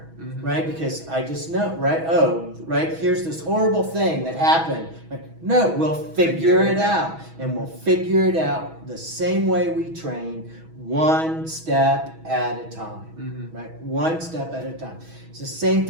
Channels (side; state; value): left; late; 6.2 ms